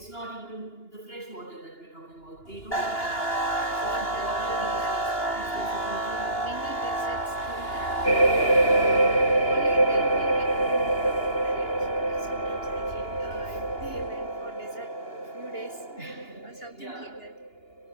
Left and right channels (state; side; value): late; right; 2.9 ms